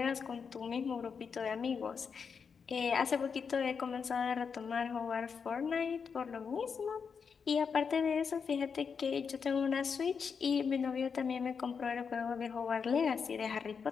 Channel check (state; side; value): quieter; right; 6.0 dB